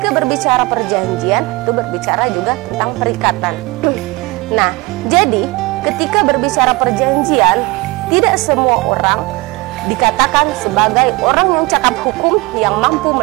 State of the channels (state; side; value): quieter; left; 23.8 dB